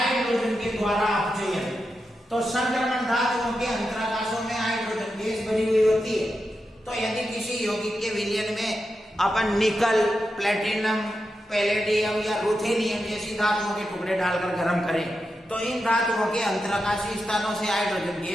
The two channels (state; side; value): normal; both; correlation 0.88